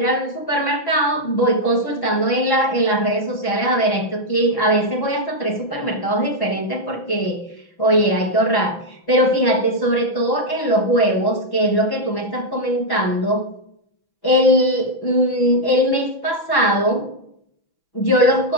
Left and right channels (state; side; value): late; right; 6.0 ms